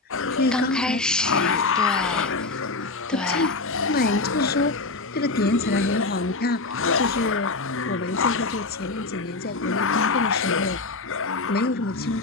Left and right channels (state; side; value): quieter; right; 3.5 dB